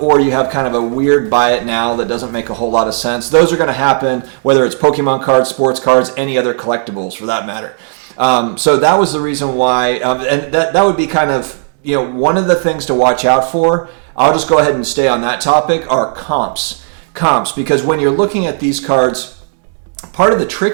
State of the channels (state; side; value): silent; left; 59 dB below the other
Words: or you have kind of a weird buy it now that doesn't make a whole lot of sense. Those are going to happen whether it's Pokemon cards, sports cards, any other collectibles for that matter. So that was the reason why, and that would be kind of one of the things to watch out for. I'll just go ahead and stay on that topic, are comps, because when you're looking at these cards, part of the